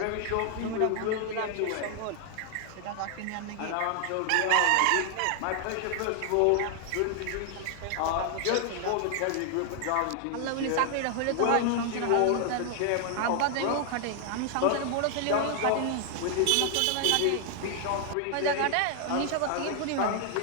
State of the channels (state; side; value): different; both; correlation 0.00